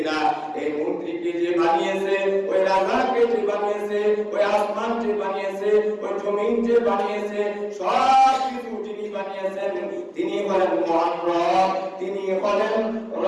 না। এই মন্ত্রীকে যে বানিয়েছে, ওই রাজাকে যে বানিয়েছে, ওই আসমান যে বানিয়েছে, ওই জমিন যে বানিয়েছে, সব কিছু যিনি বানিয়েছেন তিনি হলেন মহান রব, তিনি হলেন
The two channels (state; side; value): identical; both; correlation 1.00